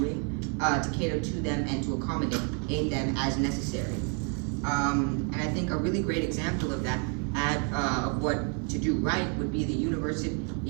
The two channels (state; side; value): quieter; left; 39.3 dB